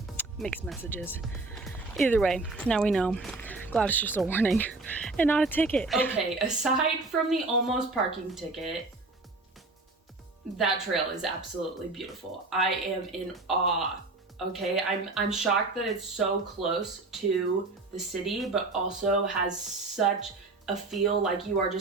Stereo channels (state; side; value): quieter; left; 3.3 dB